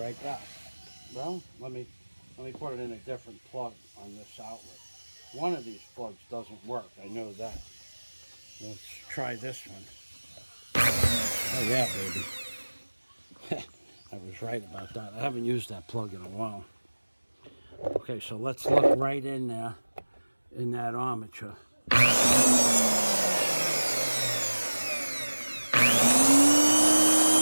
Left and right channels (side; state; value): both; inverted; correlation -1.00